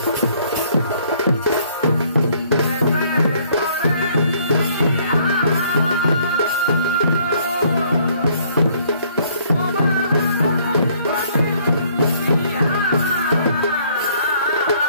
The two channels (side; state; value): both; inverted; correlation -0.62